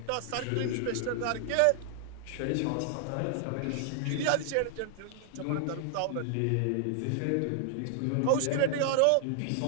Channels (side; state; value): both; different; correlation 0.00